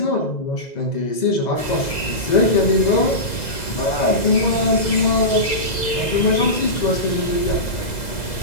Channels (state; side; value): late; right; 2.0 ms